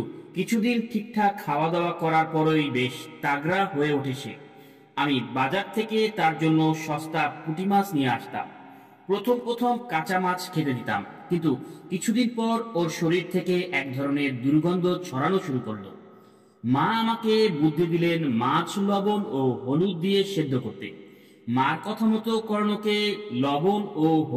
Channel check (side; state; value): both; identical; correlation 1.00